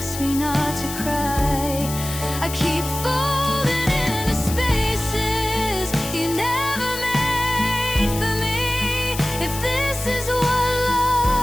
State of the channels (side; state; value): left; noise; hiss, 9 dB below the sound